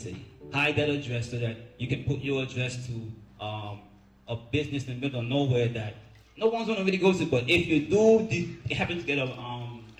hide that address so that you can put your address to a business in the middle of nowhere that no one's gonna really go to. But if you do happen to get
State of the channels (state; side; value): identical; both; correlation 1.00